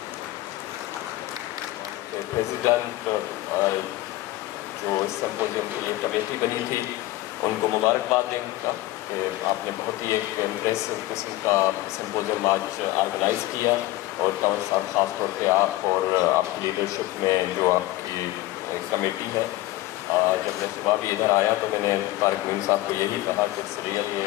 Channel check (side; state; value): right; quieter; 17.4 dB